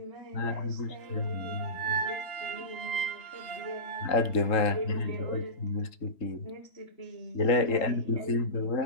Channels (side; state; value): right; late; 3.7 ms